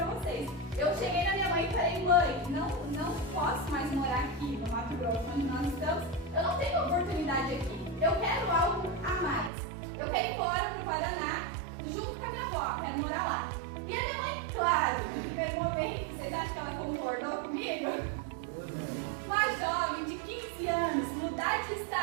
vocês. Eu cheguei na minha mãe e falei: mãe, não posso mais morar aqui no Mato Grosso, onde nós estamos. Eu não tenho oportunidade aqui. Eu quero algo a mais. Eu quero ir embora para o Paraná, junto com a minha avó, quero morar lá. E a minha mãe, claro, no primeiro momento, vocês acham que ela concordou comigo? Uma jovem de 15 anos, mudar de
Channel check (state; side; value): drops out; left; at 9.5 s